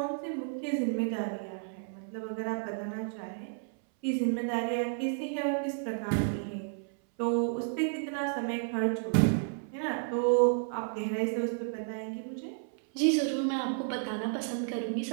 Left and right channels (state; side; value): silent; left; 57 dB below the other